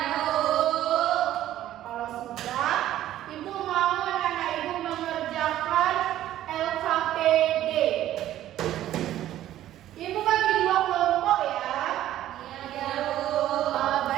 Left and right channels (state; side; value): quieter; left; 13.0 dB